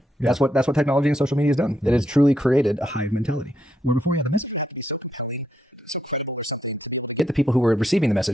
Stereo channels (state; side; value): normal; both; correlation 0.78